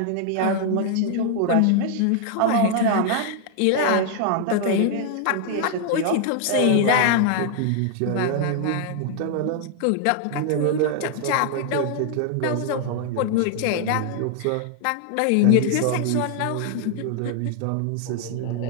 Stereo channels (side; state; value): both; different; correlation 0.00